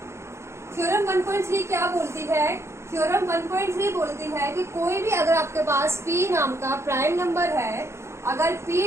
थ्योरम 1.3 क्या बोलती है? थ्योरम 1.3 बोलती है कि कोई भी अगर आपके पास p नाम का प्राइम नंबर है, अगर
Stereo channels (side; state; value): left; late; 0.13 ms